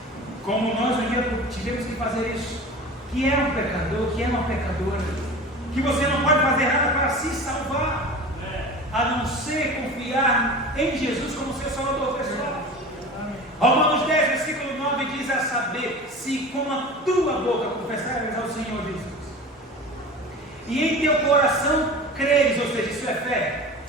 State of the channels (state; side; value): normal; both; correlation 0.35